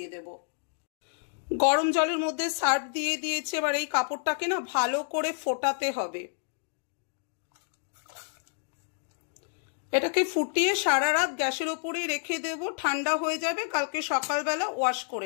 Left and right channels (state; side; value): silent; right; digital silence